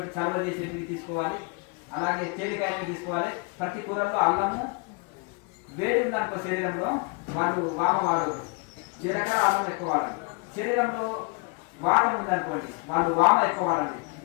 చలవ చేసేటివి తీసుకోవాలి. అలాగే తేలికాయవి తీసుకోవాలి. ప్రతి కూరల్లో అల్లము వేడి ఉందనుకో శరీరంలో వాళ్ళు వామ వాడదు, జీలకర్ర అల్లం ఎక్కువ వాడాలి. శరీరంలో వాతం ఉందనుకోండి, వాళ్ళు వామ ఎక్కువ వాడాలి.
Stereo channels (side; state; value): right; quieter; 30.4 dB